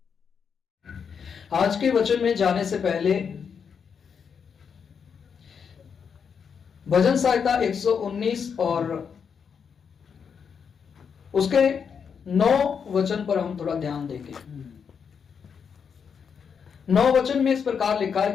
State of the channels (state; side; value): quieter; right; 6.7 dB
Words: आज के वचन में जाने से पहले भजन संहिता 119 और उसके 9 वचन पर हम थोड़ा ध्यान देंगे। 9 वचन में इस प्रकार लिखा है